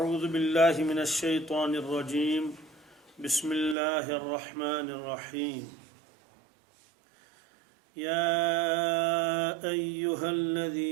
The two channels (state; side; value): drops out; left; at 3.8 s